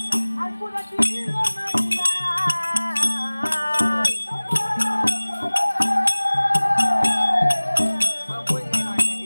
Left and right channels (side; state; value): both; inverted; correlation -1.00